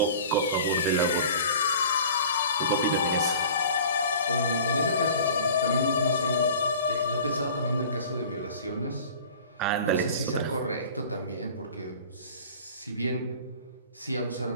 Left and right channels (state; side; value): inverted; both; correlation -0.43